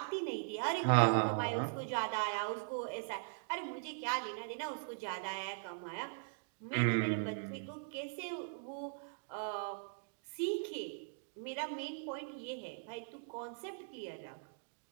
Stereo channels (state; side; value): silent; left; digital silence